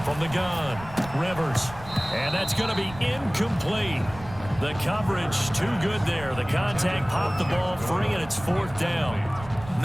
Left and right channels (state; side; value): noise; right; rumble, 15 dB below the sound